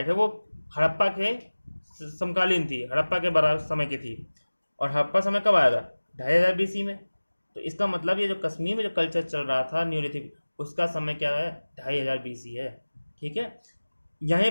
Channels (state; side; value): inverted; both; correlation -1.00